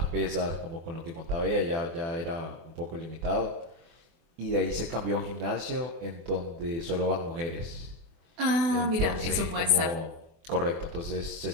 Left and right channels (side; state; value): left; late; 24 ms